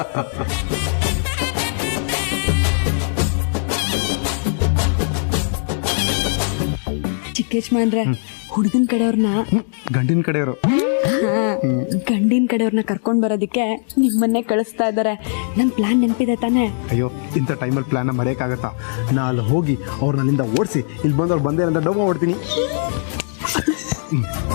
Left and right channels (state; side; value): silent; right; digital silence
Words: ಚಿಕ್ಕೇಶ್ಮಾನ್ರೆ, ಹುಡುಗನ ಕಡೆಯವ್ರನ್ನ, ಗಂಡಿನ ಕಡೆಯವರು, ಗಂಡಿನ ಕಡೆಯವ್ರನ್ನ ಕರ್ಕೊಂಡ್ ಬರೋದಕ್ಕೆ ನಿಮ್ಮನ್ನೇ ಕಳಿಸ್ತಾ ಇದ್ದಾರೆ. ನನ್ ಪ್ಲಾನ್ ನೆನಪಿದೆ ತಾನೆ? ಅಯ್ಯೋ, ಇಂಥ ಟೈಮಲ್ಲಿ ಪ್ಲಾನ್ನ ಮರೆಯೋಕ್ಕಾಗತ್ತಾ? ನಾ ಅಲ್ಲಿ ಹೋಗಿ ಅವ್ರನ್ನ ಅಲ್ಲಿಂದ ಓಡಿಸಿ ಇಲ್ಲಿ ಬಂದು ಅವ್ರು ಬಂದೇ ಅಂತ ಡೌ ಮಾಡ್ತೀನಿ.